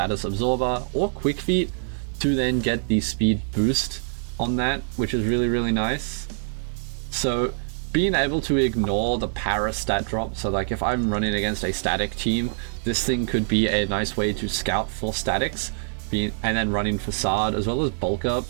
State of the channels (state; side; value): silent; left; 62 dB below the other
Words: absorber, or Quick Feet to then get the speed boost on that, which is really nice. So being able to ignore the para stat drop, so like if I'm running against a static team, this thing could be a nice way to scout for statics, and then running Facade as well as Bulk Up.